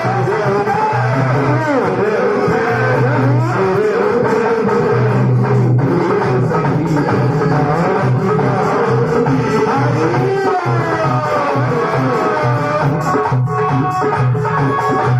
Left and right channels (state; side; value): identical; both; correlation 1.00